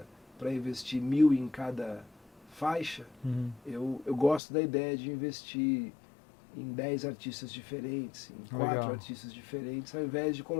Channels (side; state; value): right; drops out; at 4.4 s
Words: para investir 1.000 em cada faixa, eu gosto da ideia de investir em 10 artistas diferentes, em 4 artistas diferentes, ao invés de